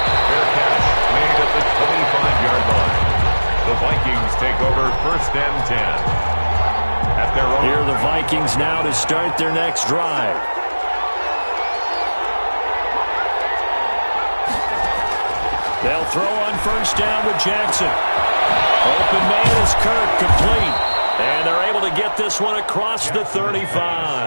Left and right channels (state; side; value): inverted; both; correlation -1.00